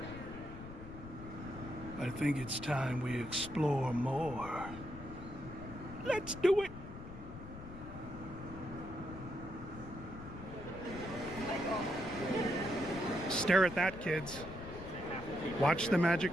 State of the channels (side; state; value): left; noise; rumble, 12 dB below the sound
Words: I think it's time we explore more. Let's do it! Stare at that, kids. Watch the